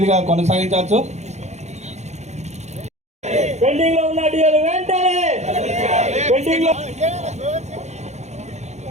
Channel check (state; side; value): late; left; 0.33 ms